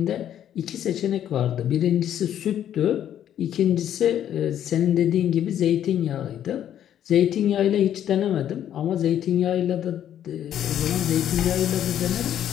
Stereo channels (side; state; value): right; quieter; 10.5 dB